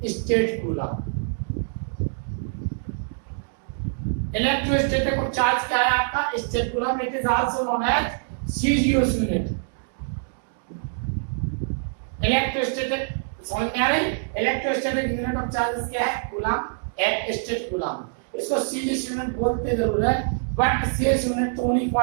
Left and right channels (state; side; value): silent; left; digital silence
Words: statcoulomb. Electrostatic of charge क्या है आपका? Statcoulomb. It is also known as CGS unit. Electrostatic, समझ में आ रही? इलेक्ट्रोस्टैटिक यूनिट ऑफ चार्ज क्या है? कूलम, एक स्टेट कूलम। इसको सीजीएस यूनिट बोलते जरूर है, बट सीजीएस यूनिट तो उन्हीं